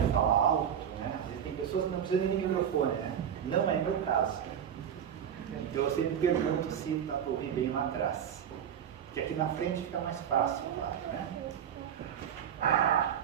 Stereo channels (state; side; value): quieter; left; 8.8 dB